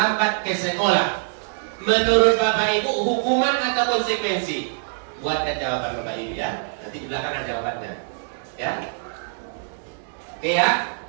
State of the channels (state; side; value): silent; left; digital silence